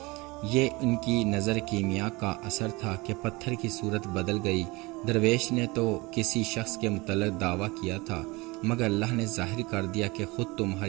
یہ ان کی نظر کیمیا کا اثر تھا کہ پتھر کی صورت بدل گئی۔ درویش نے تو کسی شخص کے متعلق دعویٰ کیا تھا، مگر اللہ نے ظاہر کر دیا کہ خود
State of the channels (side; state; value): left; quieter; 24.0 dB